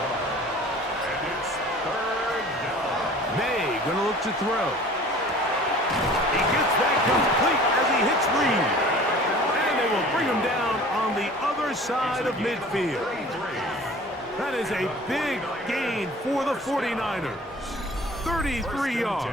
And it's 3rd down. May gonna look to throw. He gets that complete as he hits Reed. And they will bring him down on the other side of midfield. That is a big gain for the 49ers. 33 yards.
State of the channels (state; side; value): normal; both; correlation 0.46